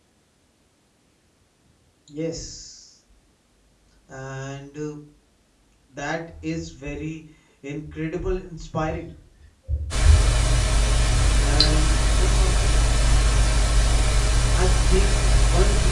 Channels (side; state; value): both; identical; correlation 1.00